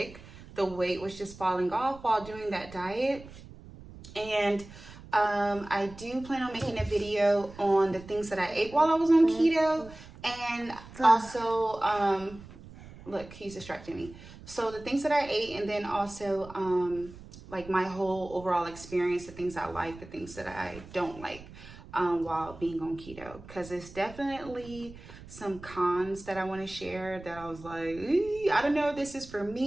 the weight was just falling off while doing that diet. And I do plan on making a video on the things that I ate while I was on keto, and also look, he's distracting me. So the things that I ate, and then also like my whole overall experience, the things I like, the things that I don't like while being on keto, because it's definitely some cons that I want to share that I was like, I don't know if this is for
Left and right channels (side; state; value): right; noise; rumble, 17 dB below the sound